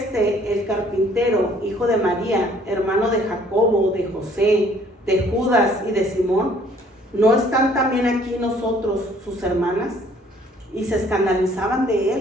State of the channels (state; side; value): normal; both; correlation 0.59